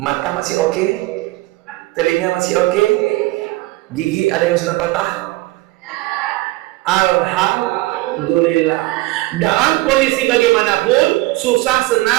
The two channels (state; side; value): quieter; left; 19.8 dB